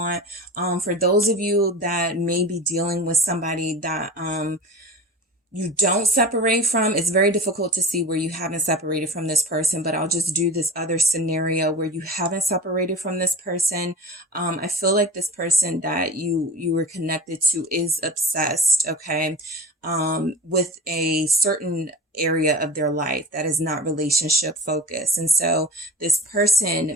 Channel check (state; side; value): normal; both; correlation 0.34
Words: For those of you that may be dealing with somebody that you don't separate from, it's very difficult to see where you haven't separated from this person, but I'll just do this other scenario where you haven't separated from this person. I feel like this person that you were connected to is obsessed, okay, with a certain area of their life that is not relationship focused. And so this